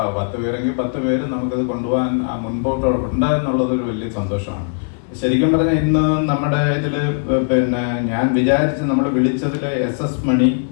പേരെങ്കിൽ 10 പേര് നമുക്കിത് കൊണ്ടുപോകാൻ മുൻപോട്ട് ഉണ്ടായെന്നുള്ളതൊരു വലിയ സന്തോഷമാണ്. ശരിക്കും പറഞ്ഞാൽ ഇന്ന് നമ്മുടെ ഇതില് പിന്നെ ഞാൻ വിചാരിച്ച് നമ്മൾ വിളിച്ചതിൽ SS മണി,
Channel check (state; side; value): silent; right; digital silence